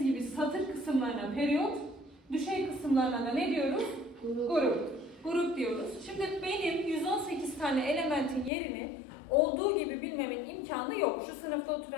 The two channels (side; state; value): right; drops out; at 8.5 s